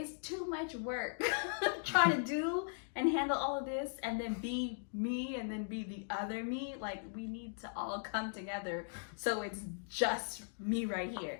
too much work trying to do and handle all of this and then be me and then be the other me. Like, we need to all come together so it's just me right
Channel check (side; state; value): right; silent; digital silence